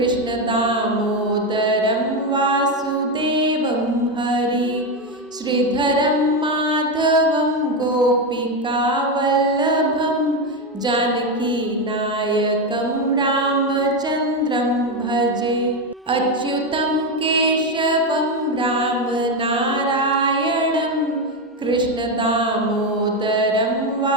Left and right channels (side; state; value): both; normal; correlation 0.11